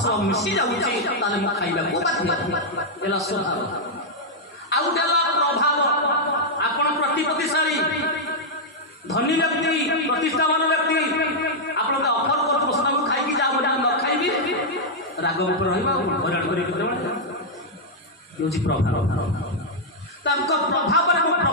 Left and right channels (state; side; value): normal; both; correlation -0.04